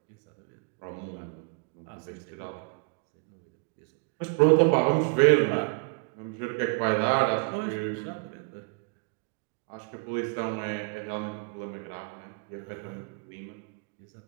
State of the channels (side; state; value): left; quieter; 32.3 dB